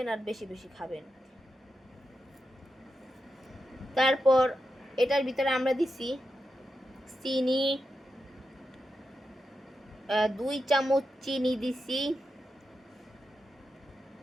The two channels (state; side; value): normal; both; correlation 0.88